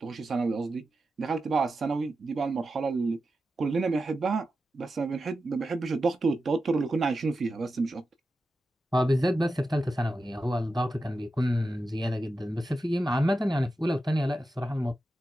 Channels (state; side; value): normal; both; correlation 0.91